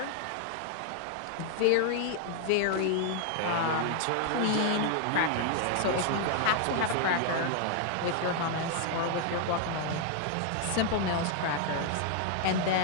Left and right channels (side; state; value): both; different; correlation 0.00